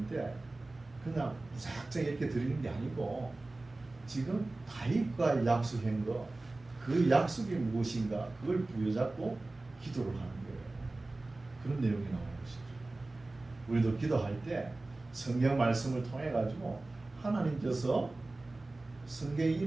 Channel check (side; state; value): left; quieter; 3.0 dB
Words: 그냥 무작정 이렇게 드리는 게 아니고 지금 다윗과 약속한 거, 그 약속이 무엇인가 그걸 부여잡고 기도를 하는 거예요. 그런 내용이 나오는 것이죠. 우리도 기도할 때 성경 말씀을 통해 가지고 하나님께서 성경